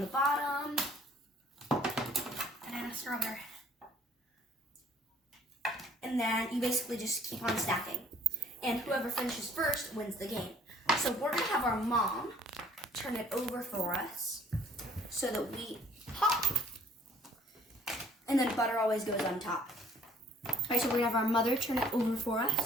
bottom, Banana, strawberry. and then you basically just keep on stacking. And whoever finishes first wins the game. So we're going to have our mom turn it over for us so that we pop. And then butter always goes on top. All right, so we're going to have our mother turn it over for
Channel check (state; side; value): normal; both; correlation 0.58